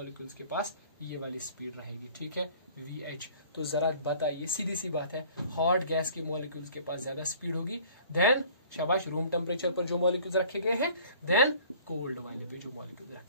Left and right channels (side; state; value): both; inverted; correlation -0.51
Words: के पास ये वाली स्पीड रहेगी, ठीक है, VH। तो जरा बताइए, सीधी सी बात है, हॉट गैस के मॉलिक्यूल्स के पास ज्यादा स्पीड होगी देन, शाबाश, रूम टेम्परेचर पर जो मॉलिक्यूल्स रखे गए हैं, देन कोल्ड वाले पे जो मॉलिक्यूल्स